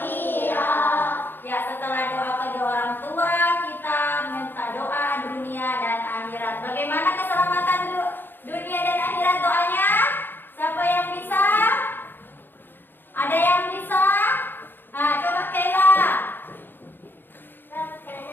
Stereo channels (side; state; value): right; late; 0.097 ms